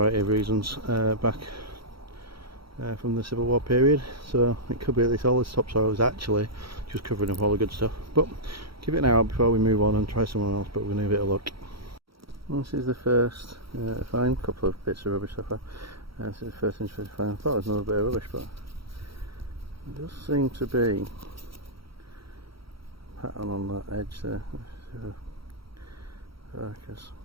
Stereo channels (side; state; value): left; late; 0.75 ms